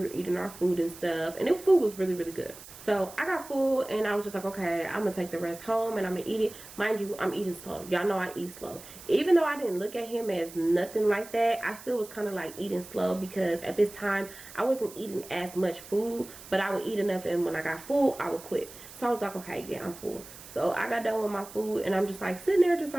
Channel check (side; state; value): right; noise; hiss, 17 dB below the sound